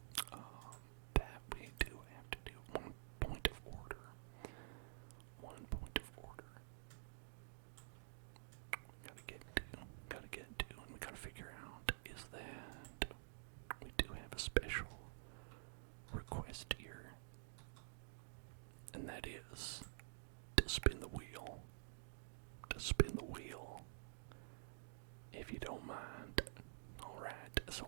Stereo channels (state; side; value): silent; left; digital silence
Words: that we do have to do, one point of order. Gotta get to, and we gotta figure out is that we do have a special request here, and that is to spin the wheel. If you don't mind. Alright, so